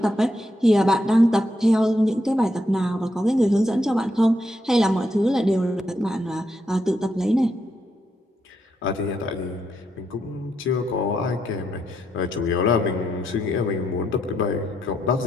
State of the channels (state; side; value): normal; both; correlation 0.79